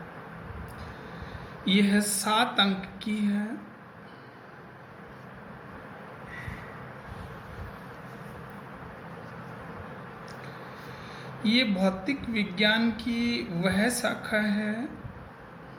यह 7 अंक की है। ये भौतिक विज्ञान की वह शाखा है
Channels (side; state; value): both; identical; correlation 1.00